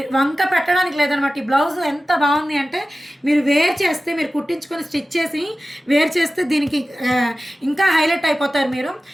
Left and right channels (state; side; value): normal; both; correlation 0.95